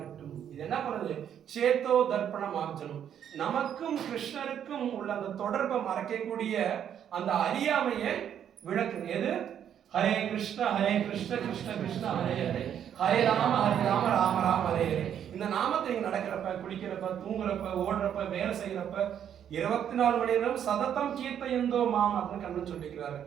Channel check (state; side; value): quieter; left; 9.3 dB